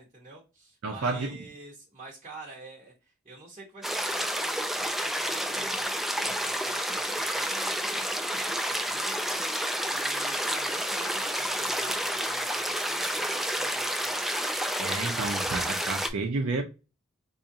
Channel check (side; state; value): both; normal; correlation 0.72